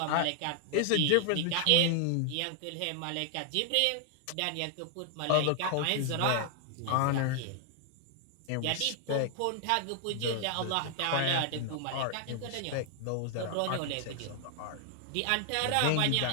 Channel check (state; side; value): different; both; correlation 0.00